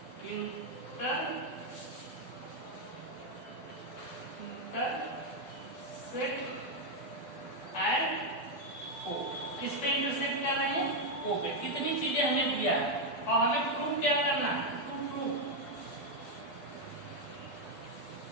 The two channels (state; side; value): late; right; 12 ms